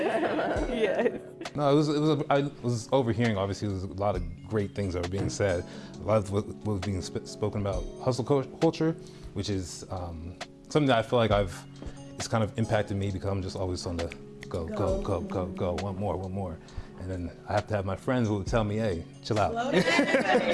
Yeah. No, I was overhearing, obviously, there was a lot of great things that were being said. A lot of what was being spoken about hustle culture, which is something that I feel like it's kind of impacted me because I'm just always on the go, one more. And then I have to have my friends who will tell me, hey, chill out.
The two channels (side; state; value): both; identical; correlation 1.00